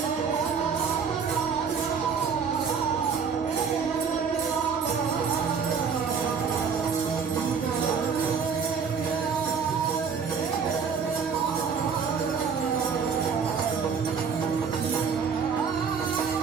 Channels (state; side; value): quieter; left; 6.1 dB